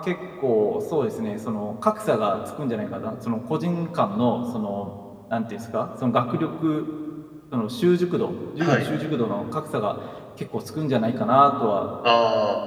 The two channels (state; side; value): identical; both; correlation 1.00